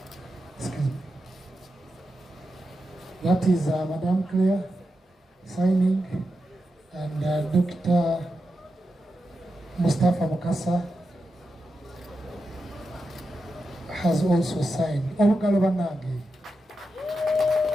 Excuse me. That is Madam Claire signing, and Dr. Mustafa Mukasa has also signed.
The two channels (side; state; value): both; normal; correlation 0.89